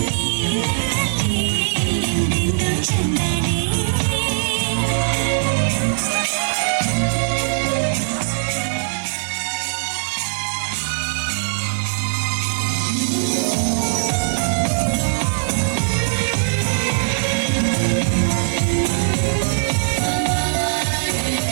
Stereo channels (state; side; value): silent; left; digital silence